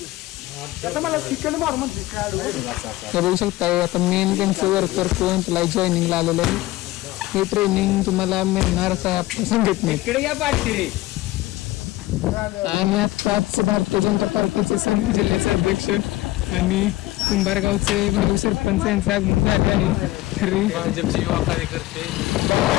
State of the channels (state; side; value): quieter; right; 17.7 dB